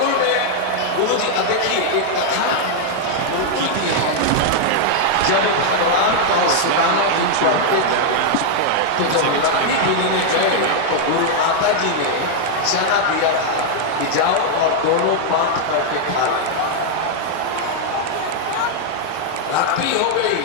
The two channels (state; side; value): different; both; correlation 0.00